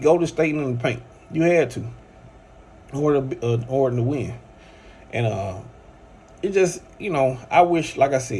Golden State in the paint. You had to, or to win. And it just, I wish, like I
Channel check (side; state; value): both; identical; correlation 1.00